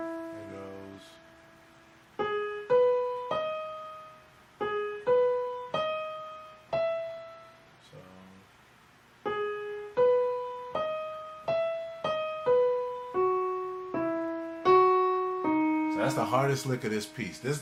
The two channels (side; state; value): both; identical; correlation 1.00